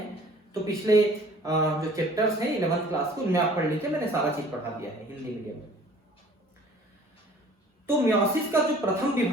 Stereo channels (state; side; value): normal; both; correlation 0.51